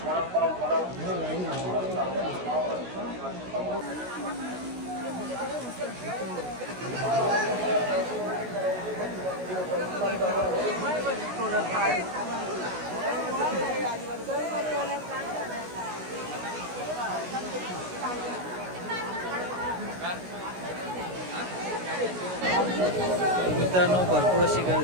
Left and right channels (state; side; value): late; left; 16 ms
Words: मित्रांनो भरपूर अशी